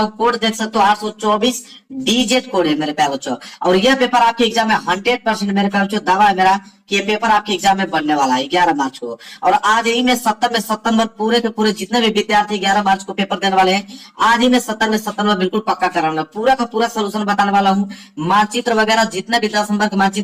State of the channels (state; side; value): identical; both; correlation 1.00